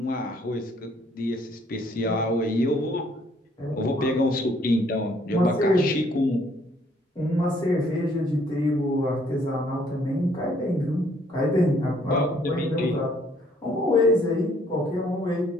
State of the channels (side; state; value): both; normal; correlation 0.64